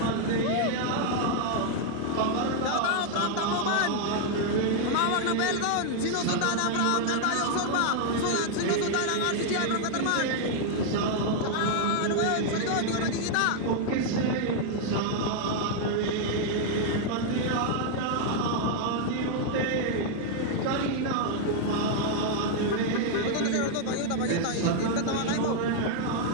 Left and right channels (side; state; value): both; different; correlation 0.00